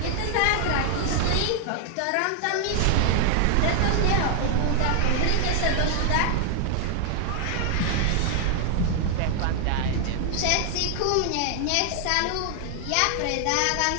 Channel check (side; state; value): both; different; correlation 0.00